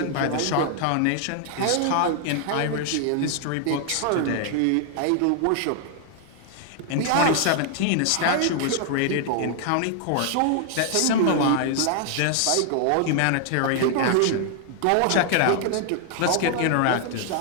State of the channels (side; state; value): both; different; correlation 0.00